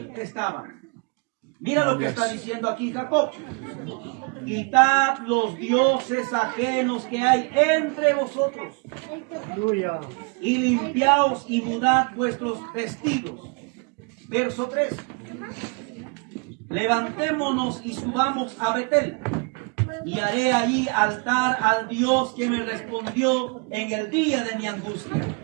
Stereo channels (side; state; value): left; quieter; 34.1 dB